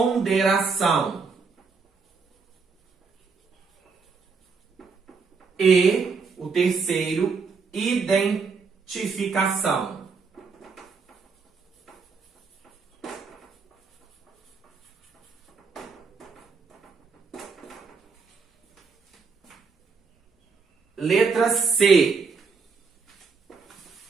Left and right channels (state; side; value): quieter; left; 5.0 dB